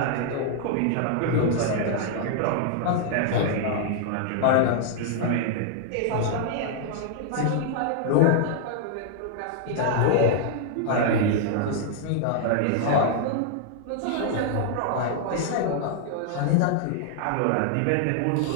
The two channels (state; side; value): different; both; correlation -0.01